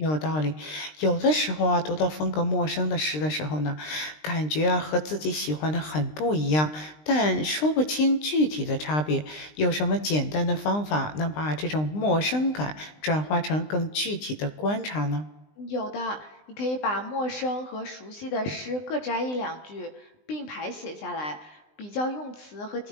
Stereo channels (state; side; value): late; right; 20 ms